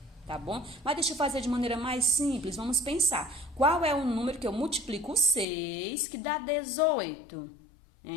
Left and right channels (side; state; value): right; drops out; at 5.5 s